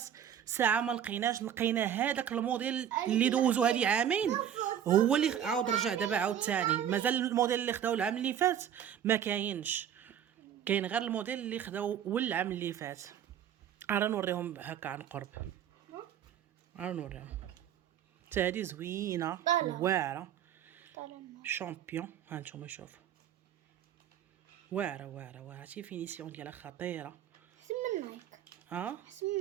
ساعه ما لقيناش. لقينا هذاك الموديل اللي دوزو هذه عامين، هو اللي عاود رجع دابا عاود ثاني. مازال الموديل اللي خداو العام اللي فات ما كاينش، كاين غير الموديل اللي خداو والعام اللي فات. راه نوريهم هكا عن قرب، راه نوريهم. حتى هذه زوينه واعره شامبيون. ها نتوما شوفوا واعره شي فينيسيون ديالها خطيره. سم نايك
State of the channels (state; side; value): quieter; left; 9.6 dB